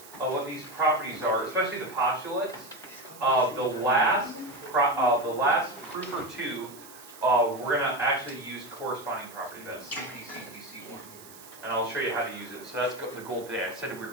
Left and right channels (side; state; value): right; noise; hiss, 19 dB below the sound